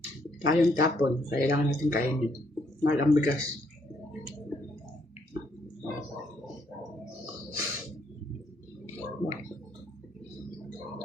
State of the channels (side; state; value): both; normal; correlation 0.71